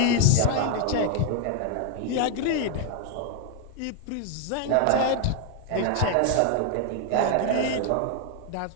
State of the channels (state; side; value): different; both; correlation 0.00